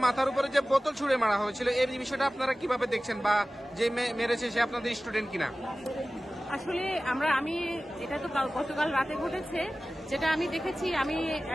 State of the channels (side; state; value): both; normal; correlation 0.96